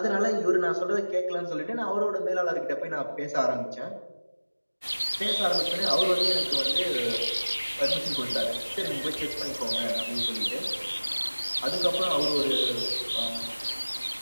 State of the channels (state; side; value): inverted; both; correlation -1.00